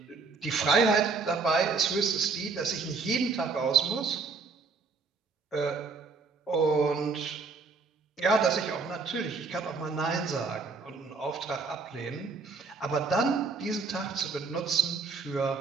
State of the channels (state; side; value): quieter; left; 4.4 dB